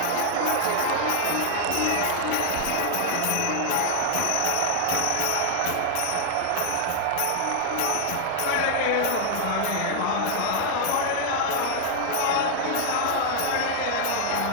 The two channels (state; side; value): different; both; correlation 0.00